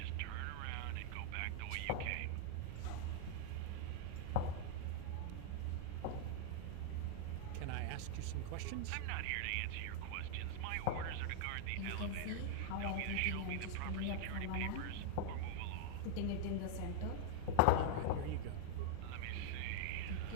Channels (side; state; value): both; different; correlation 0.00